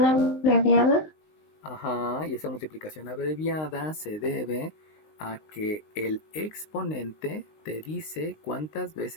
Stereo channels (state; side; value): late; right; 19 ms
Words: abreviada. Ajá, y esa multiplicación abreviada se debe a que el exponente te dice cuántas